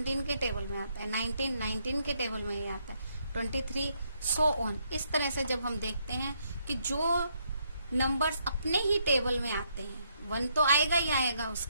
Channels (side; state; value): both; inverted; correlation -0.74